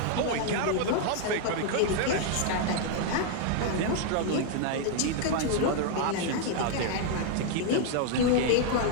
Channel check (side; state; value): both; different; correlation 0.00